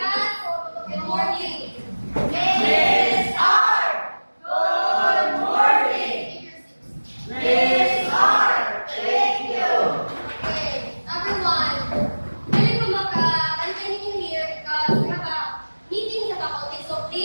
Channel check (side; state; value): both; inverted; correlation -1.00